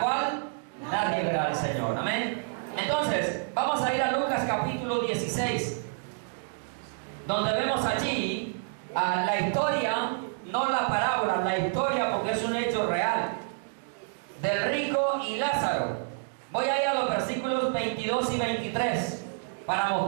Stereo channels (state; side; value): silent; left; digital silence